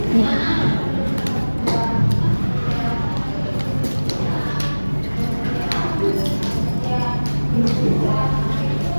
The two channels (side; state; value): both; inverted; correlation -1.00